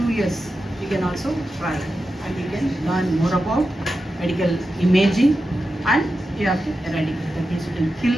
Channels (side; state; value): both; normal; correlation 0.90